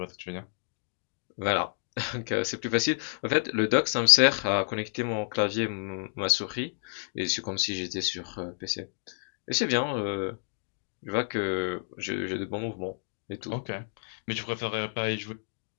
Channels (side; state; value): right; silent; digital silence